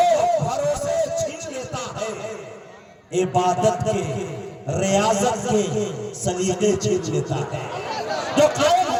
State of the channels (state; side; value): identical; both; correlation 1.00